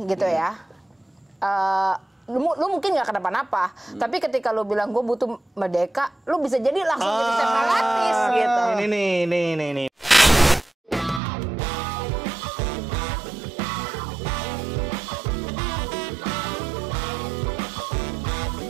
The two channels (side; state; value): left; drops out; at 11.2 s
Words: gitu ya, lu mungkin nggak kenapa-napa, tapi ketika lu bilang gue butuh merdeka, lu bisa jadi langsung jadi separatis gitu. Ini.